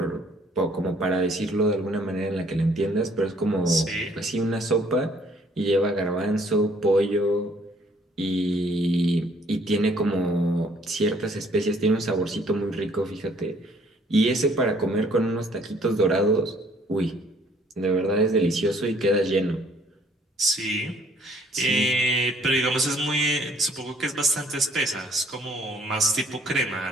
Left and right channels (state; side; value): normal; both; correlation 0.61